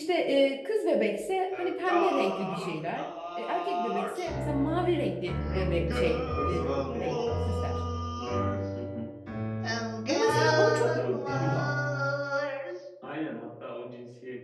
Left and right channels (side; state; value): both; identical; correlation 1.00